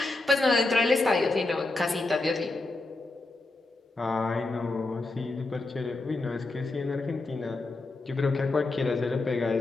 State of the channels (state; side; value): quieter; right; 3.2 dB